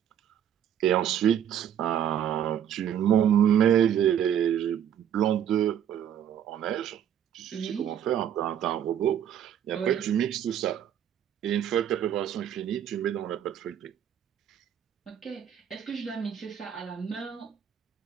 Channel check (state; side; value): quieter; left; 9.7 dB